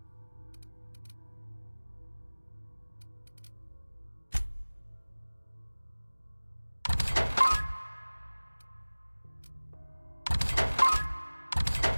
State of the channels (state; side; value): inverted; both; correlation -1.00